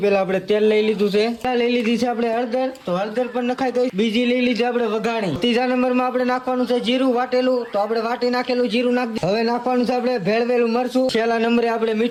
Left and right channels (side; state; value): both; identical; correlation 1.00